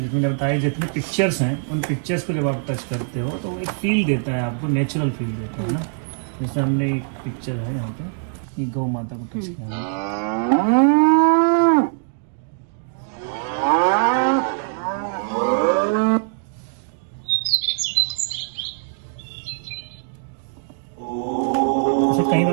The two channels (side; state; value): left; silent; digital silence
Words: जितने लगता है, जितने पिक्चर्स हैं उन पिक्चर्स को जब आप टच करते हो तो एक फील देता है आपको, नेचुरल फील देता है ना। जैसे हमने एक पिक्चर है यहाँ पे, एक गौ माता को टच किया, ऐसे कहीं